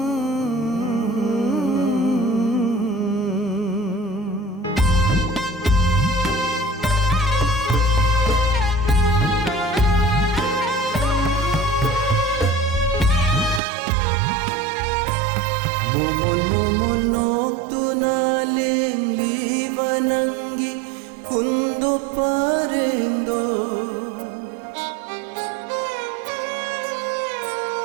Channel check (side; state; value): left; drops out; at 13.6 s